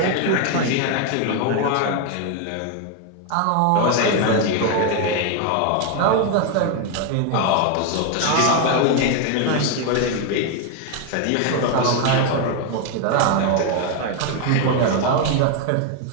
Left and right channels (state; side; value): different; both; correlation 0.01